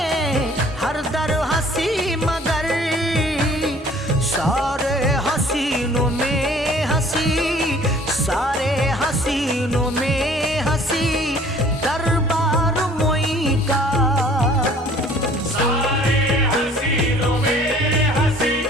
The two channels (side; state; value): both; normal; correlation 0.53